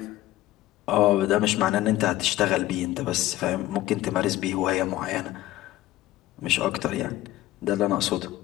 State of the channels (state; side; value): quieter; right; 15.6 dB